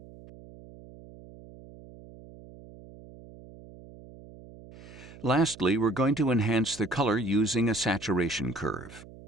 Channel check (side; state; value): right; noise; hum, 19 dB below the sound